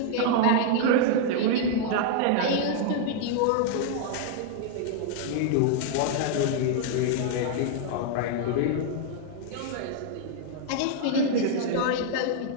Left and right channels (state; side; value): different; both; correlation 0.00